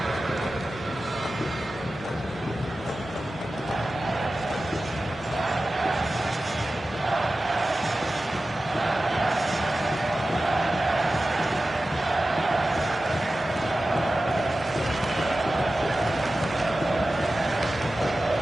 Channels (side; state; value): both; normal; correlation 0.94